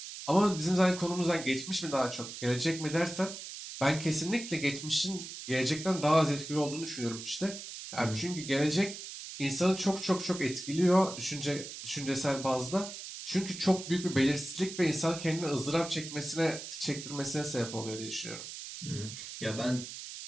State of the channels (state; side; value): noise; right; hiss, 10 dB below the sound